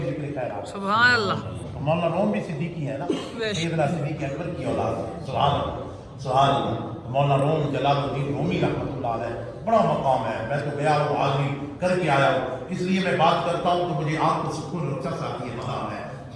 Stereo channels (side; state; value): both; identical; correlation 1.00